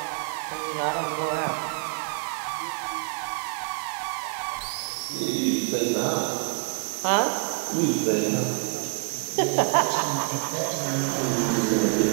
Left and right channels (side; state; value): left; quieter; 38.4 dB